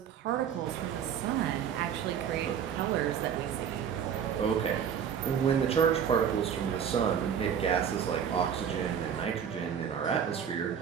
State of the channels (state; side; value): quieter; left; 8.1 dB